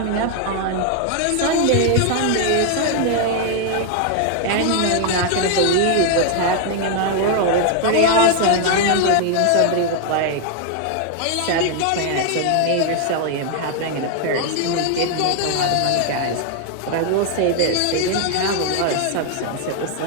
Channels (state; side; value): different; both; correlation 0.00